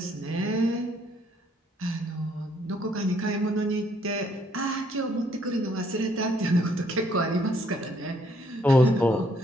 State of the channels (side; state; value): both; normal; correlation 0.67